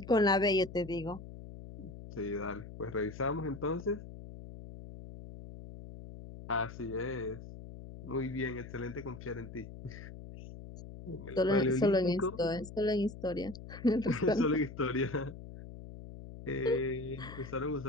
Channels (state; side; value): noise; left; hum, 13 dB below the sound